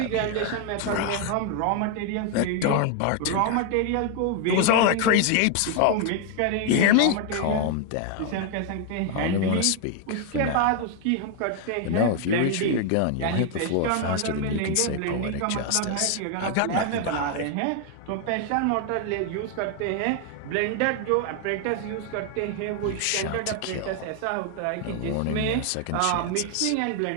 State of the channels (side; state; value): both; different; correlation 0.01